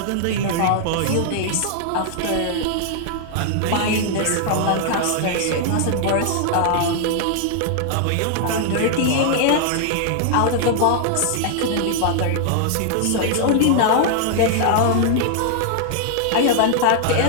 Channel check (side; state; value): both; different; correlation -0.01